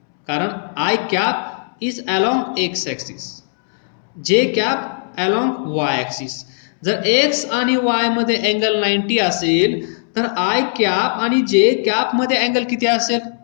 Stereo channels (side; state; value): right; silent; 67 dB below the other